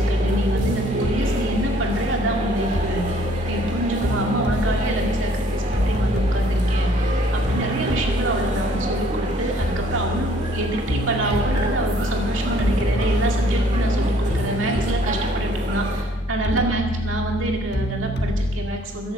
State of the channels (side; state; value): both; normal; correlation 0.60